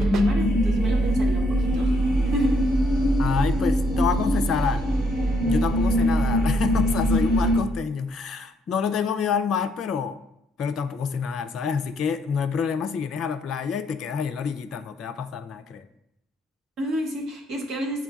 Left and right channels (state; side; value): normal; both; correlation 0.72